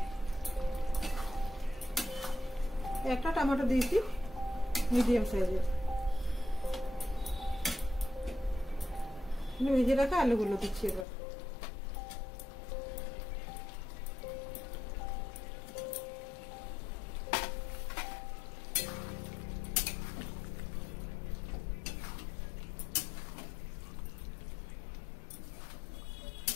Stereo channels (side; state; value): right; drops out; at 11.1 s